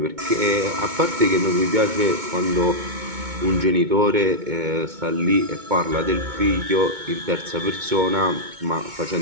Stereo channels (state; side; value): late; left; 2.2 ms